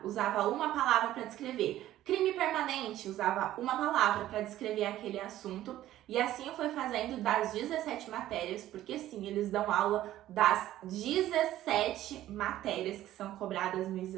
usava uma palavra para descrever. Crime permanente, usava uma palavra para descrever aquele assunto. E assim eu fui fazendo das 17 matérias, porque sim, eles dão aula das 17 matérias que são cobradas no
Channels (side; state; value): left; quieter; 13.7 dB